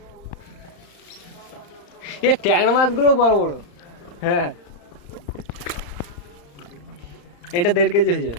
এ ট্যাংরা মাছগুলো বড় বড়। হ্যাঁ, এটা 1.5 কেজি হয়ে যাবে।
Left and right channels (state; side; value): late; right; 35 ms